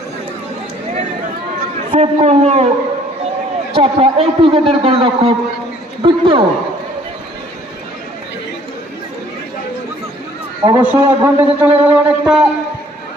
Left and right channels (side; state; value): both; normal; correlation 0.58